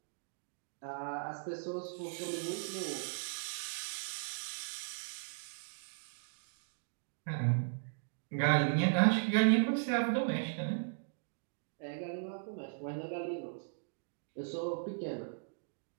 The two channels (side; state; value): left; silent; digital silence